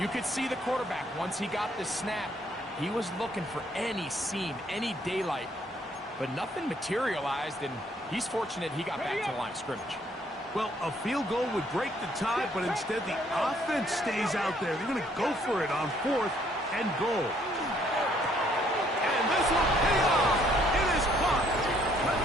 could see the quarterback, once he got the snap, he was looking for any seam, any daylight. But nothing materialized, and he's fortunate he got back to the line of scrimmage. Well, a field goal would break the tie, but instead the offense stays out there. They're going to go for it on 4th and goal. And this will pay off. It is caught.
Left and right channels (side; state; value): both; normal; correlation 0.66